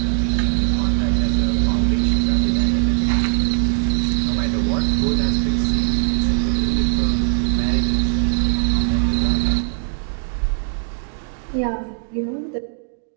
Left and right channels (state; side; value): silent; left; digital silence